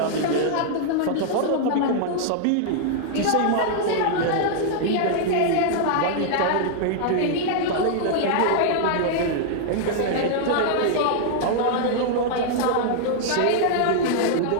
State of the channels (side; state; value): both; different; correlation -0.01